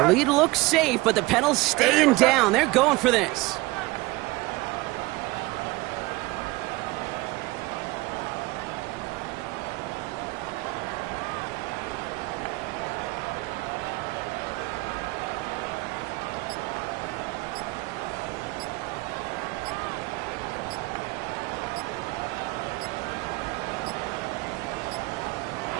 lead looks safe, but the Penals staying down. They're going for this.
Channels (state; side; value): quieter; left; 21.9 dB